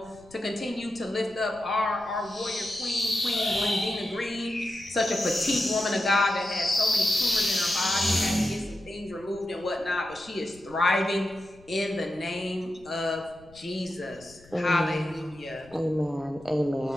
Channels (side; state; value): left; noise; rumble, 25 dB below the sound